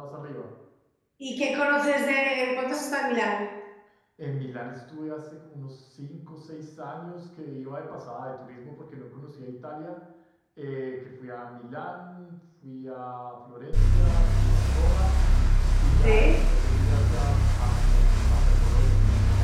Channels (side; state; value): both; identical; correlation 1.00